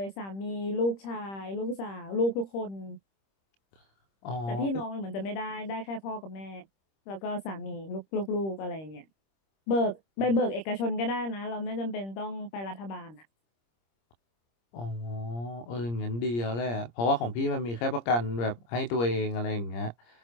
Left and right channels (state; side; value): late; right; 26 ms